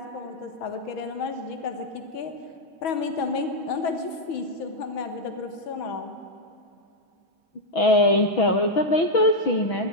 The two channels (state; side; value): late; right; 6.2 ms